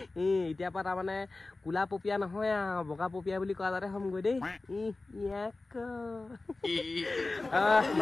এতিয়াৰ পৰা তাৰমানে কোলা পপিয়া নহয় আৰু বগা পপিয়া বুলি কোৱা যাতে হ'মগৈ দেই ইয়াক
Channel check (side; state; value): right; quieter; 3.3 dB